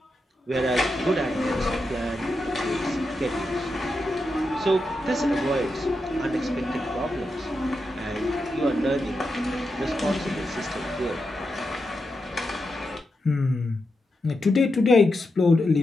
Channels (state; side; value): normal; both; correlation 0.87